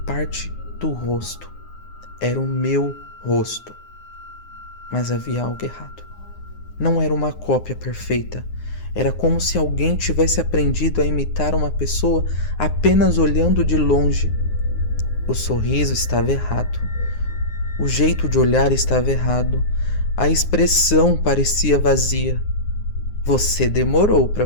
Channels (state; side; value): late; right; 9.6 ms